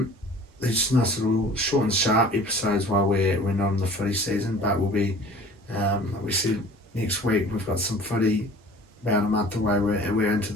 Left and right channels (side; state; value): both; normal; correlation 0.46